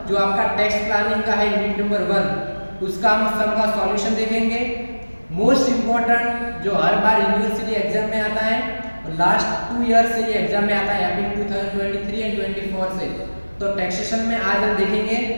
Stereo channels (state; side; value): inverted; both; correlation -1.00